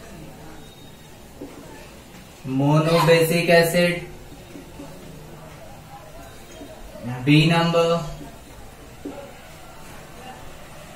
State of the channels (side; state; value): both; identical; correlation 1.00